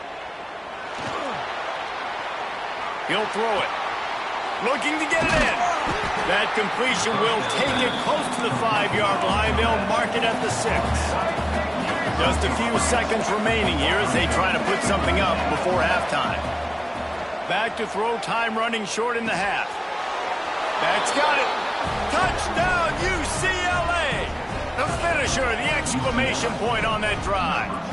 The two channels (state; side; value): identical; both; correlation 1.00